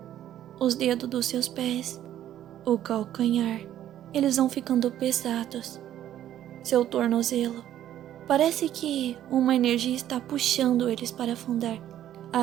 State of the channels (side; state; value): left; quieter; 11.7 dB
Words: Os dedos dos seus pés, o calcanhar, eles vão ficando pesados. Seu tornozelo, parece que uma energia está puxando eles para afundar